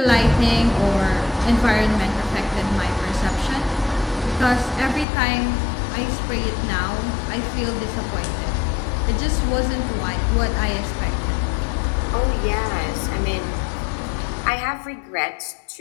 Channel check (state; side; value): drops out; right; at 5.1 s